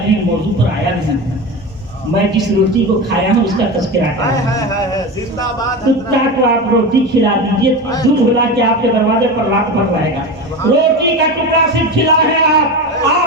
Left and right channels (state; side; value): normal; both; correlation 0.24